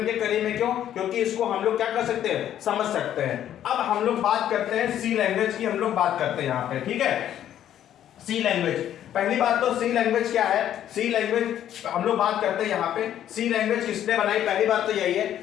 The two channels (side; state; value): right; quieter; 11.0 dB